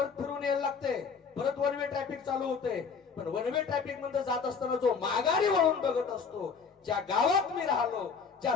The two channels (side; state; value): right; quieter; 5.7 dB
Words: फिरून यायला लागते, परत 1 वे ट्रॅफिक चालू होते. पण 1 वे ट्रॅफिक मध्ये जात असताना जो माघारी वळून बघत असतो, ज्या गावात मी राहिलो, ज्या